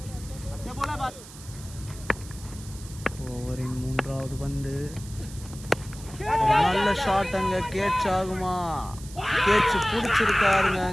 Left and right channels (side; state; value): right; noise; hiss, 17 dB below the sound